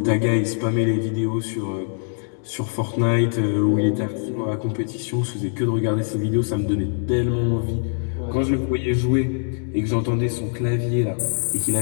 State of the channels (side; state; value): right; silent; 64 dB below the other